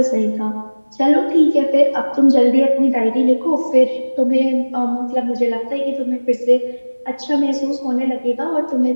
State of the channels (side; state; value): both; inverted; correlation -1.00